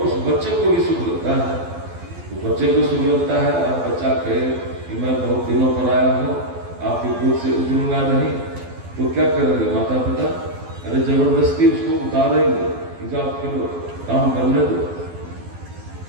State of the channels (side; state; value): left; late; 12 ms